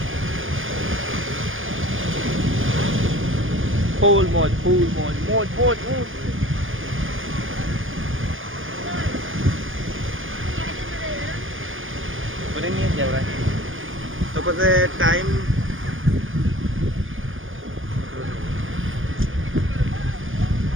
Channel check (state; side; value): late; left; 0.58 ms